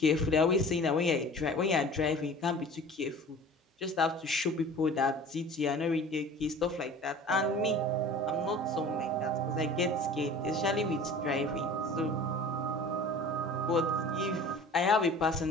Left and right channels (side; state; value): both; normal; correlation 0.42